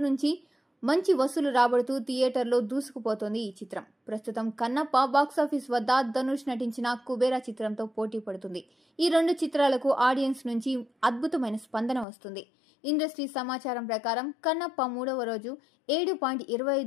నుంచి మంచి వసూలు రాబడుతూ థియేటర్లో దూసుకుపోతోంది ఈ చిత్రం. ప్రస్తుతం కన్నప్ప బాక్సాఫీస్ వద్ద ధనుష్ నటించిన కుబేరా చిత్రంతో పోటీ పడుతుంది. ఈ 2 చిత్రాలకు ఆడియన్స్ నుంచి అద్భుతమైన స్పందన వస్తుంది. ఇండస్ట్రీ సమాచారం ప్రకారం కన్నప్ప 3వ రోజు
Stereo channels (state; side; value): drops out; right; at 12.1 s